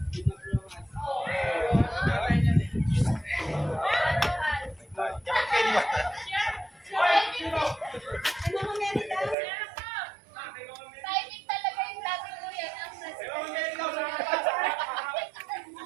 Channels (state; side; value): drops out; left; at 9.3 s